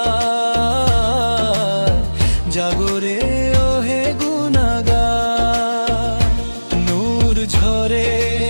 জাগরে ওহে গুনাহগার। নূর ঝরে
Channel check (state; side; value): inverted; both; correlation -1.00